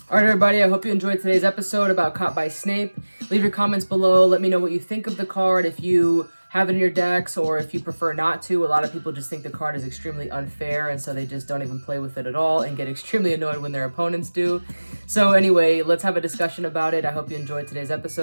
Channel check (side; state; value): both; inverted; correlation -1.00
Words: All right, everybody, I hope you enjoyed today's episode about Caught by Snape. Leave your comments below. Let me know what you think of the card, if you have it in your decks or if you prefer not to. A lot of people just think the card is extremely unfair, and so they just don't even play with it at all and get extremely annoyed when their opponents do. So anyway, let's have a discussion about it. I hope you enjoyed today's